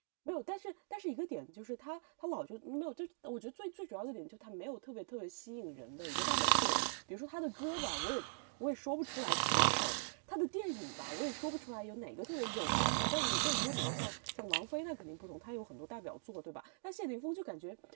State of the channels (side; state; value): left; silent; digital silence